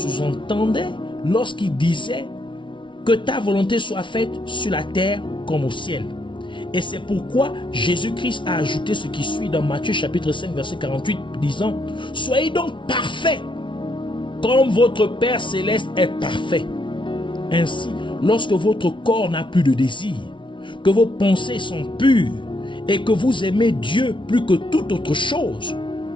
lorsqu'il disait que ta volonté soit faite sur la terre comme au ciel. Et c'est pourquoi Jésus-Christ a ajouté ce qui suit dans Matthieu chapitre 5 verset 48 disant « Soyez donc parfaits comme votre Père céleste est parfait. » Ainsi, lorsque votre corps n'a plus de désir, que vos pensées sont pures et que vous aimez Dieu plus que toute autre chose,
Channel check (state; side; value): late; right; 0.24 ms